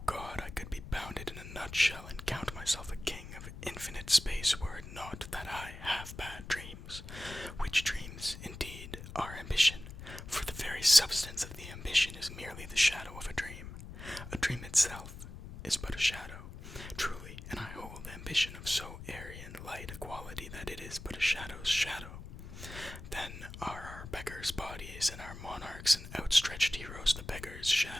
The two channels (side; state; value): left; noise; rumble, 12 dB below the sound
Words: God, I could be bounded in a nutshell and count myself a king of infinite space were it not that I have bad dreams, which dreams, indeed, are ambition, for the very substance of the ambition is merely the shadow of a dream. A dream itself is but a shadow, truly, and I hold ambition of so airy and light a quality that it is but a shadow's shadow. Then are our beggars' bodies and our monarchs and outstretched heroes the beggars'